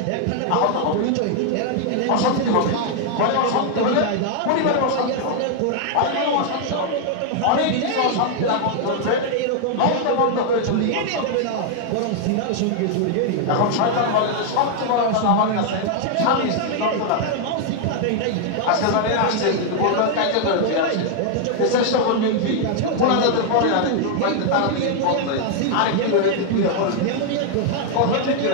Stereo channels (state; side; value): different; both; correlation 0.00